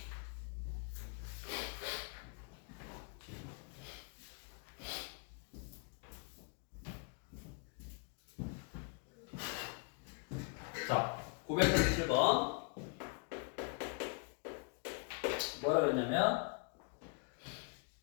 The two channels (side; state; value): right; quieter; 37.6 dB